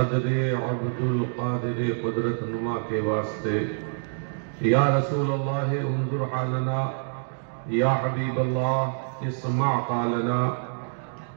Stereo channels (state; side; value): silent; left; 61 dB below the other